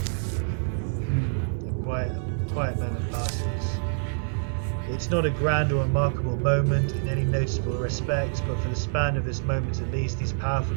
A quiet moment passes. It's not a grand or remarkable moment in any noticeable respect, but for the span of this moment at least, these powerful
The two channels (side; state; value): left; silent; 61 dB below the other